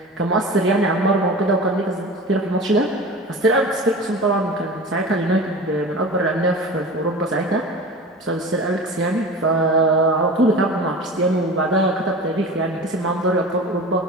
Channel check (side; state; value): both; normal; correlation 0.34